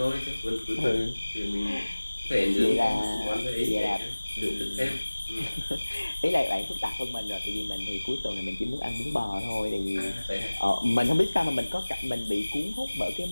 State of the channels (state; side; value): inverted; both; correlation -1.00